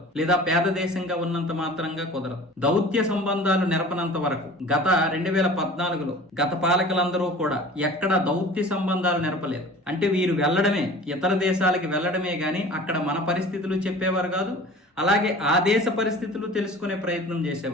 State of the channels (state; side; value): normal; both; correlation 0.42